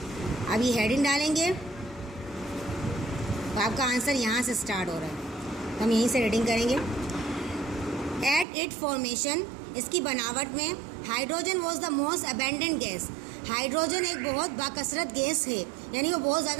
अब ये हेडिंग डालेंगे तो आपका आंसर यहाँ से स्टार्ट हो रहा है, हम यहीं से रीडिंग करेंगे। एट इट फॉर्मेशन, इसकी बनावट में hydrogen was the most abundant gas. Hydrogen एक बहुत बाकसरत गैस है, यानी वो बहुत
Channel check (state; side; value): drops out; left; at 8.5 s